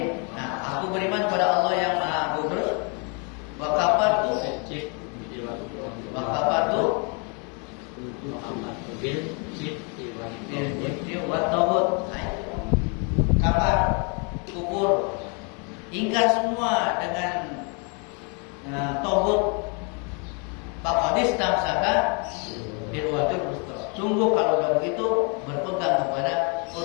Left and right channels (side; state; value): right; quieter; 35.5 dB